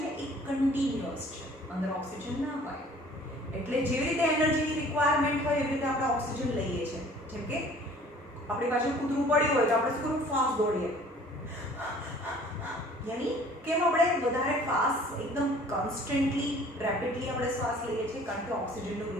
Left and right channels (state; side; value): normal; both; correlation 0.51